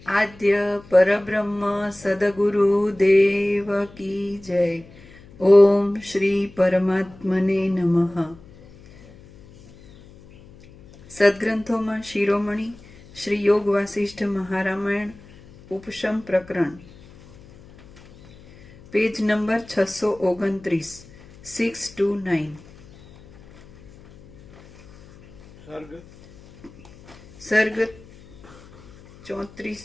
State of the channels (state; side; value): noise; left; hum, 23 dB below the sound